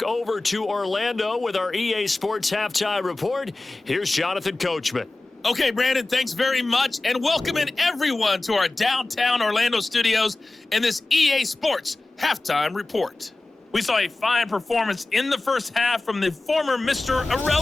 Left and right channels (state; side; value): quieter; right; 3.0 dB